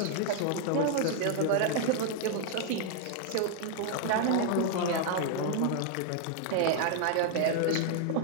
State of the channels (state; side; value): different; both; correlation 0.00